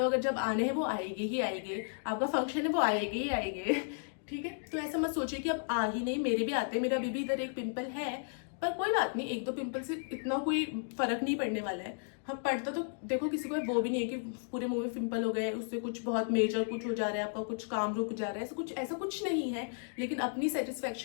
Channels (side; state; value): right; silent; digital silence